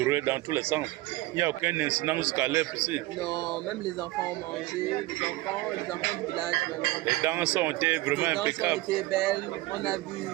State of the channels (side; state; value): left; quieter; 18.6 dB